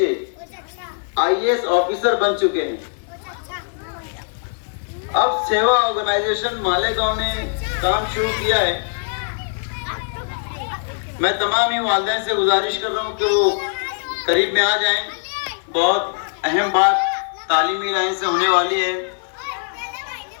IAS آفیسر بن چکے ہیں۔ اب سیوا آرگنائزیشن مالیگاؤں نے کام شروع کیا ہے۔ میں تمام ہی والدین سے گزارش کر رہا ہوں کہ وہ قریب میں آ جائیں۔ بہت اہم بات تعلیمی لائن سے ہونے والی ہے۔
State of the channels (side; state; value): right; silent; digital silence